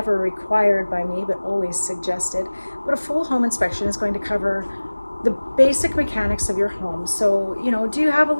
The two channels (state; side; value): inverted; both; correlation -1.00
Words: required by me, but always suggested. But a full home inspection is going to cover the basic mechanics of your home. So, you know, do you have a